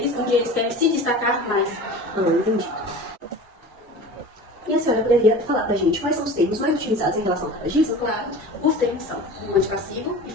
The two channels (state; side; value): normal; both; correlation 0.36